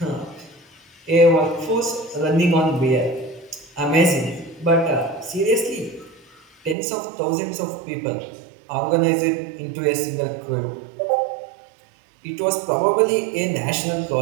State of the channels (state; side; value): drops out; left; at 6.8 s